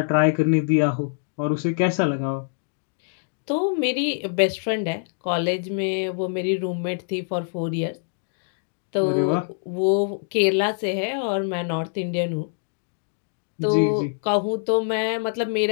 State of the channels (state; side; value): silent; right; digital silence